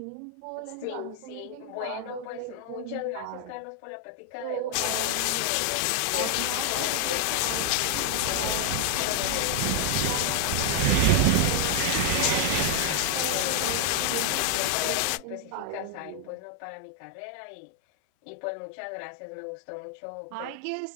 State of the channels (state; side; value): different; both; correlation 0.00